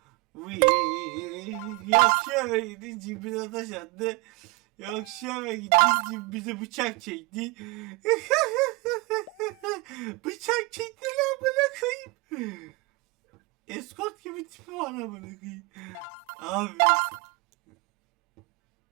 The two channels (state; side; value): quieter; left; 24.8 dB